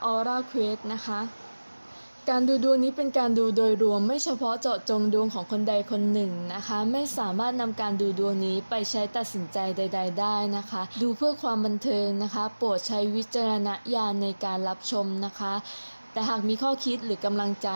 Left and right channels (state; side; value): inverted; both; correlation -1.00